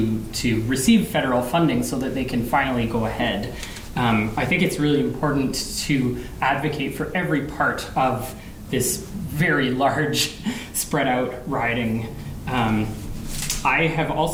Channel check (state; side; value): identical; both; correlation 1.00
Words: receive federal funding so that they can finally go ahead. I think it's really important to advocate for every part of this very large, spread out riding. I have